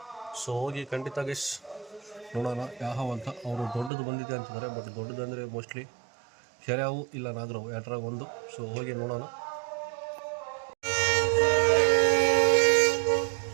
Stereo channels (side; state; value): left; drops out; at 3.9 s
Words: ಸೊ ಹೋಗಿ ಖಂಡಿತ ಗೈಸ್ ನೋಡೋಣ ಯಾವ ಅಂತ. ಅವರು ದೊಡ್ಡದು ಬಂದಿದೆ ಅಂತಿದ್ದಾರೆ, ಬಟ್ ದೊಡ್ಡದು ಅಂದರೆ ಮೋಸ್ಟ್ಲಿ ಕೆರೆಯಾವು ಇಲ್ಲ ನಾಗರಾವು ಎರಡರಾಗ ಒಂದು. ಸೊ ಹೋಗಿ ನೋಡೋಣ.